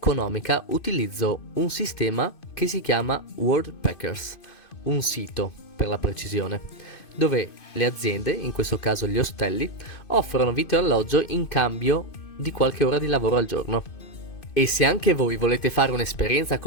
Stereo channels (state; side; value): late; right; 2.5 ms